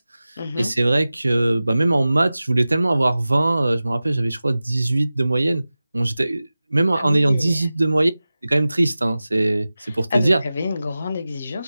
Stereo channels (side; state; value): both; inverted; correlation -0.96